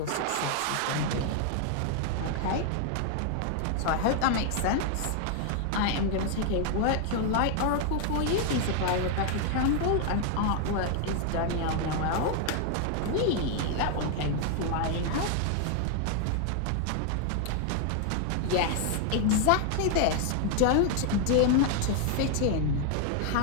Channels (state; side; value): different; both; correlation 0.00